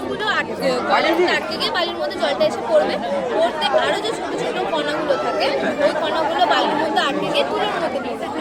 কয়লার মধ্যে আটকে গিয়ে বালির মধ্যে জলটা এসে পড়বে, পড়তে আরও যে ছোটো ছোটো কণাগুলো থাকে ওই কণাগুলো বালির মধ্যে আটকে গিয়ে তুলোর মধ্যে পড়বে,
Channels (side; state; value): both; identical; correlation 1.00